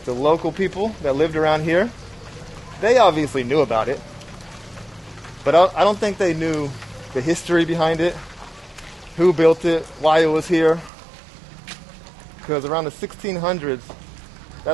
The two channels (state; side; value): drops out; left; at 10.9 s